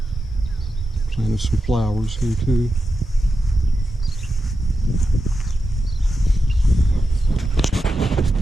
Planted some flowers here too.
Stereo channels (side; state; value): both; normal; correlation 0.89